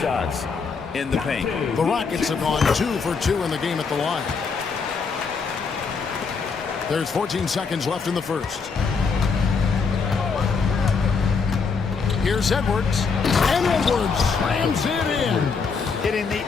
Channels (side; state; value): right; quieter; 5.2 dB